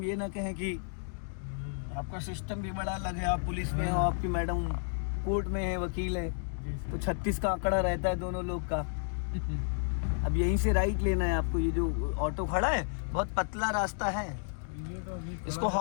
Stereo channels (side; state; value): right; silent; digital silence